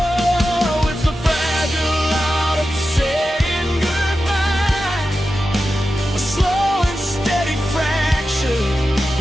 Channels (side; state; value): both; normal; correlation 0.92